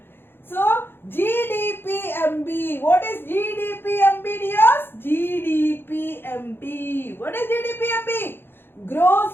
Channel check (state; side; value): late; right; 0.10 ms